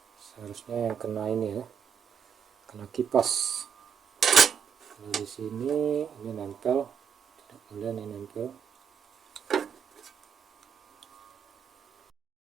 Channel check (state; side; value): quieter; left; 6.8 dB